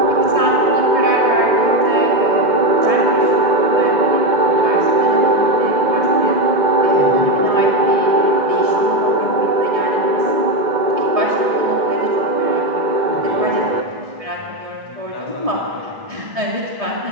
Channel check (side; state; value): left; late; 1.7 ms